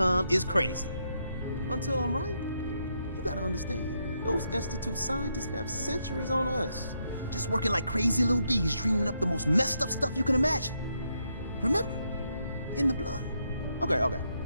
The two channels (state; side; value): inverted; both; correlation -0.79